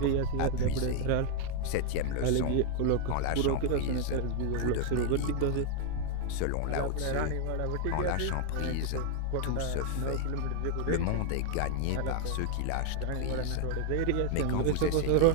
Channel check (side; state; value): both; different; correlation 0.00